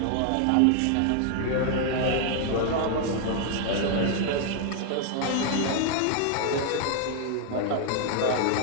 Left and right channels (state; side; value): different; both; correlation 0.00